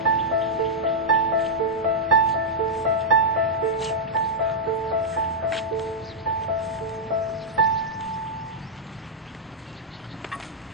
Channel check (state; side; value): normal; both; correlation -0.08